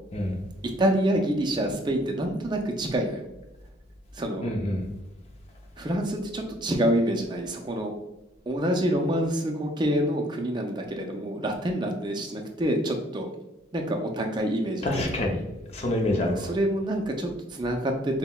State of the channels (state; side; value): normal; both; correlation 0.62